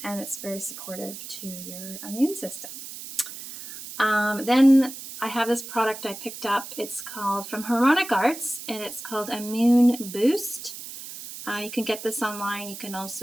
and it's very supportive to your immune system. Then I have this product I picked up. It's called from Harmonic Arts, and it's called Immune Boost. You can get this online. You can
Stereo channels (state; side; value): noise; right; hiss, 11 dB below the sound